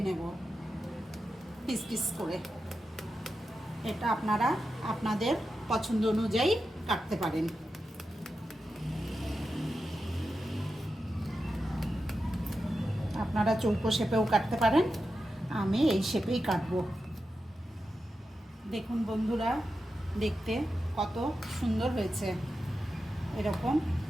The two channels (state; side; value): normal; both; correlation 0.90